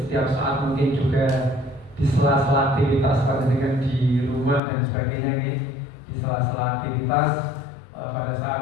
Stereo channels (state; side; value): drops out; right; at 4.6 s